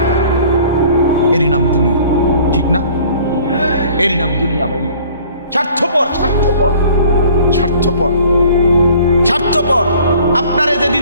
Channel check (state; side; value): inverted; both; correlation -0.52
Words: এরই নাম দুনিয়া, ঠিক না? এরই নাম দুনিয়া ভাই। স্বার্থপর, স্বার্থপর, স্বার্থপর, স্বার্থপর। আপনারে